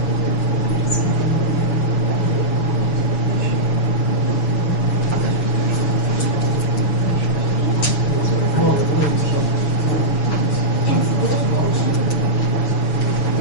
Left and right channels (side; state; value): right; late; 7.4 ms